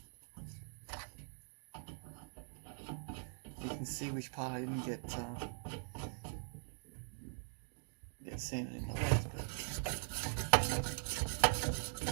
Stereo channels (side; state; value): left; silent; digital silence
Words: You can see which part I didn't get sanded in the legs, but